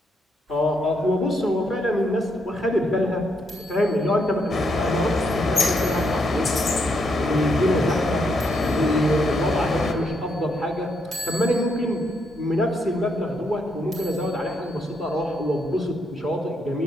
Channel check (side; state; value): both; normal; correlation 0.77